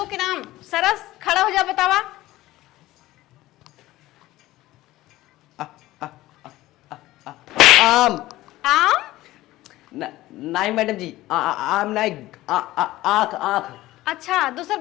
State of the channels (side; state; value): right; quieter; 16.8 dB